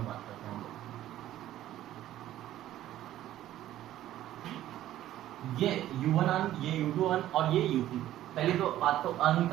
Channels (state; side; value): quieter; left; 13.3 dB